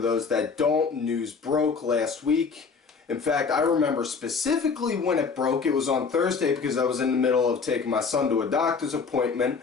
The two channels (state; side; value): quieter; right; 5.2 dB